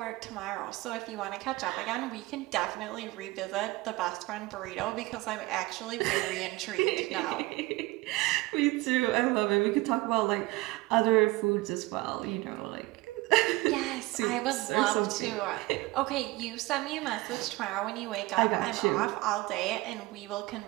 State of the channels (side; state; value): left; quieter; 20.5 dB